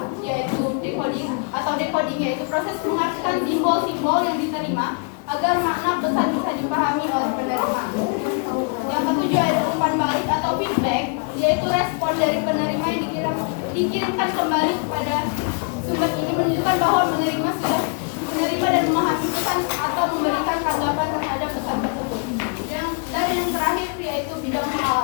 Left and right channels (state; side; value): quieter; right; 39.8 dB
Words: yaitu decoding yaitu proses mengartikan simbol-simbol yang diterima agar makna pesan bisa dipahami oleh penerima. Yang ketujuh ada umpan balik atau feedback, yaitu respon dari penerima yang dikirimkan kembali kepada sumber ini menunjukkan bahwa menerima sudah menerima dan memahami pesan atau memberikan tanggapan terhadap pesan tersebut. Dan yang terakhir yaitu bidang